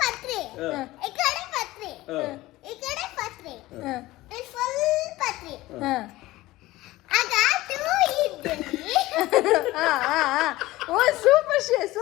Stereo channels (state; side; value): quieter; right; 18.0 dB